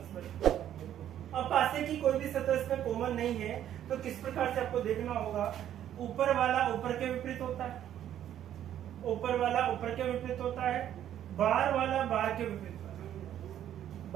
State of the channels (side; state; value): left; quieter; 11.0 dB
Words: है। अब पासे की कोई भी सतह इसमें कॉमन नहीं है, तो किस प्रकार से आपको देखना होगा, ऊपर वाला ऊपर के विपरीत होता है, ऊपर वाला ऊपर के विपरीत होता है, बाहर वाला बाहर के विपरीत होता है,